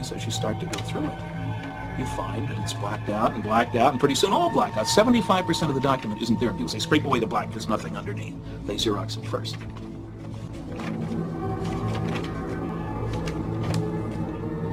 is, as you start to go through it, you find that it's blacked out, and pretty soon all blacked out. 75% of the document isn't there. People say, scrape away the black, there's nothing underneath. They Xerox it first.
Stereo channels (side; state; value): both; identical; correlation 1.00